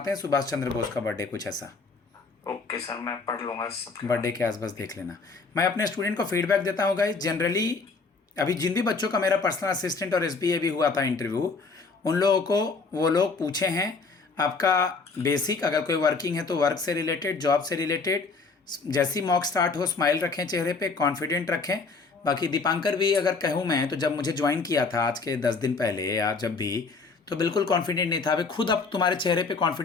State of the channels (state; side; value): quieter; right; 4.3 dB